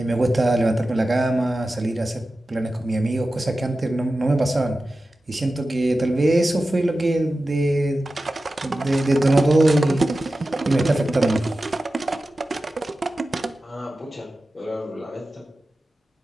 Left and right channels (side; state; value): both; normal; correlation 0.94